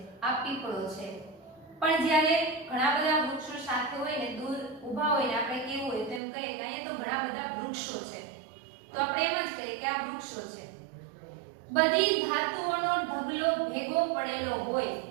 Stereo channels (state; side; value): drops out; left; at 6.2 s